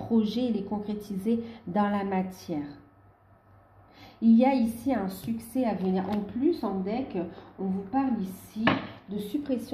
et les concrétiser dans la matière. Il y a ici un succès à venir. En plus, en deck, on vous parle ici de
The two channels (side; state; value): both; identical; correlation 1.00